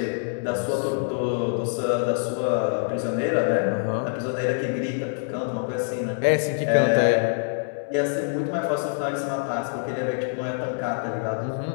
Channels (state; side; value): silent; right; 62 dB below the other